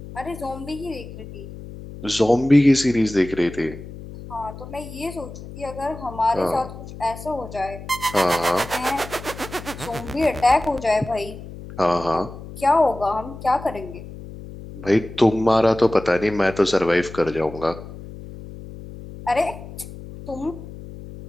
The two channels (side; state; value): left; noise; hum, 13 dB below the sound